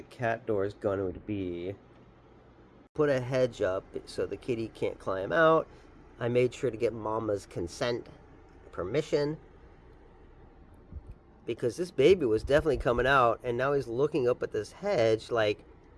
cat door is going to be. Put a hedge up so the kitty can't climb out. I made sure to get Mama's consent, permission, because this baby was definitely coming out, and now he's looking up at this hedge like,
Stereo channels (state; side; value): identical; both; correlation 1.00